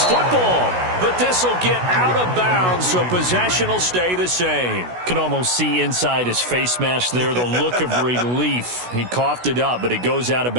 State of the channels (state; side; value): late; left; 16 ms